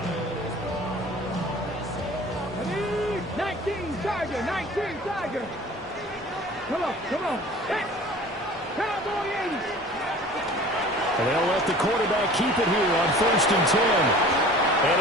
Tiger, 19 Tiger. Come on. Hey, Cowboy 80. And they'll let the quarterback keep it here on 1st and 10. And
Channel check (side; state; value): both; normal; correlation 0.45